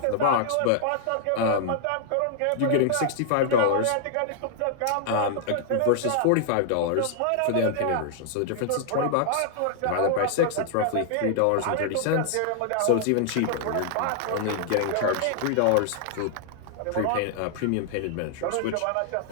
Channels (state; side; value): different; both; correlation -0.01